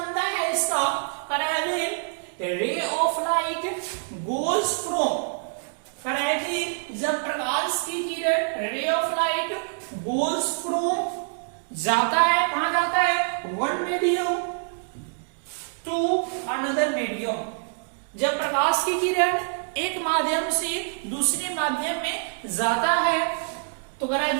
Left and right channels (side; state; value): left; silent; digital silence